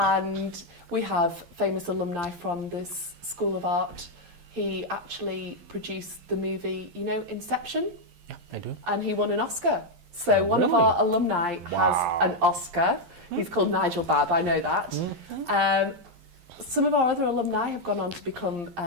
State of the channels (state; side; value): late; left; 11 ms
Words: we have famous alumni from this School of Art. He actually produced the movie, you know, Inception? Yeah, I do. And he won an Oscar. So one of really? our alumni has an Oscar. He's called Nigel Babb, I know that. Some of our other alumni have gone on to become